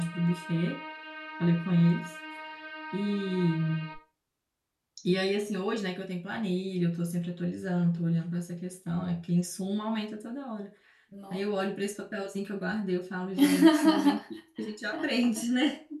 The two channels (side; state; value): both; identical; correlation 1.00